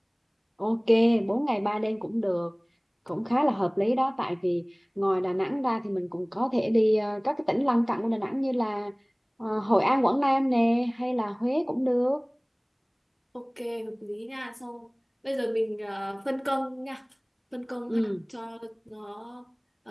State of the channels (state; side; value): identical; both; correlation 1.00